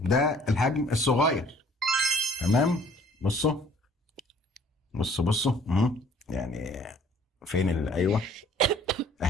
الحجم الصغير. تمام. بصوا بصوا يعني فين ايوه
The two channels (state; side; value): normal; both; correlation 0.57